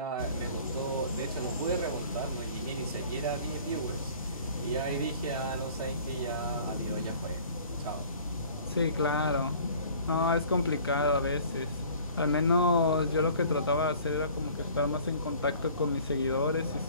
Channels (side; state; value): both; inverted; correlation -0.50